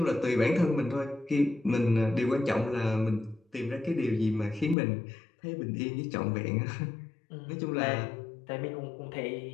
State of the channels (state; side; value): drops out; right; at 4.8 s